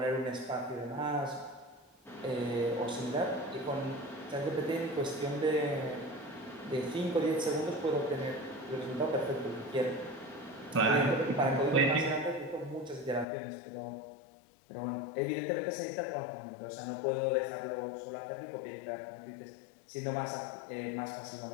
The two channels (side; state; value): right; drops out; at 13.2 s